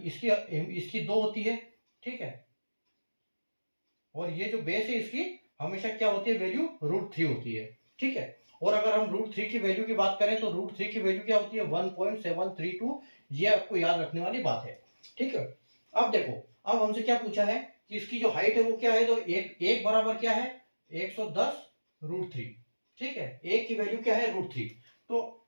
इसकी 2 होती है, ठीक है। और ये जो बेस है इसकी हमेशा क्या होती है, वैल्यू √3 होती है, ठीक है। और अगर हम √3 की वैल्यू की बात करें तो √3 की वैल्यू क्या होती है, 1.732। ये आपको याद रखने वाली बात है, ठीक है। अब देखो, अब हमसे क्या पूछा है कि इसकी जो हाइट है वो क्या है, तो एक बराबर क्या है 110√3, ठीक है। एक की वैल्यू क्या है √3। तो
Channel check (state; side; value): inverted; both; correlation -1.00